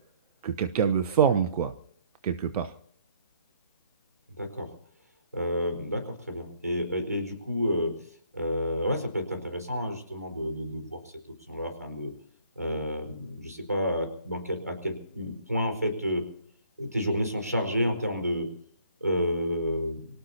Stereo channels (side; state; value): both; inverted; correlation -0.62